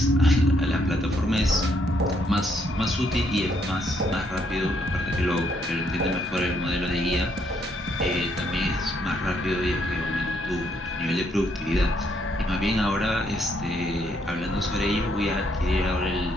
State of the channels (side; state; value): both; normal; correlation 0.72